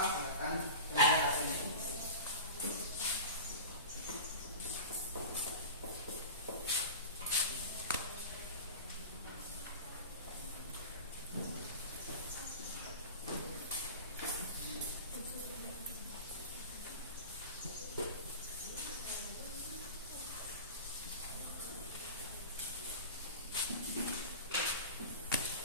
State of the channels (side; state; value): both; inverted; correlation -0.33